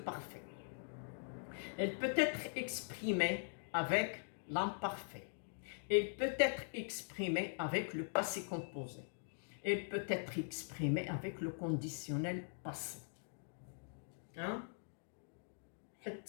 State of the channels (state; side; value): silent; right; digital silence